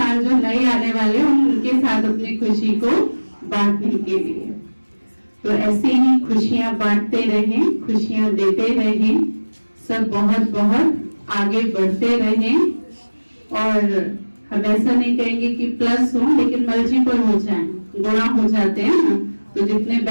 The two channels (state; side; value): inverted; both; correlation -1.00